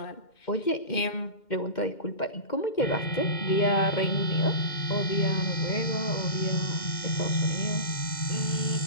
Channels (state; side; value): late; right; 2.1 ms